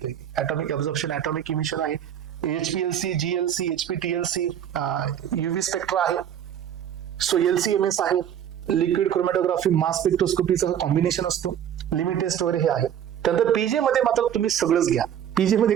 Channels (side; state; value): left; quieter; 9.8 dB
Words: ॲटॉमिक ऍब्झॉर्प्शन, ॲटॉमिक इमिशन आहे, HPLC, GLC, HPTLC, UV spectra आहे, सो LCMS आहे, लिक्विड क्रोमॅटोग्राफी, मास स्पेक्ट्रोस्कोपीचं कॉम्बिनेशन असतो, लिमिट टेस्ट वगैरे हे आहे. त्यानंतर पीजे मध्ये मात्र तुम्ही सगळंच घ्या. पीजे मध्ये